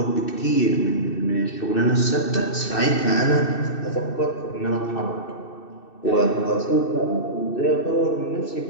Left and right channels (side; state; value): right; late; 2.7 ms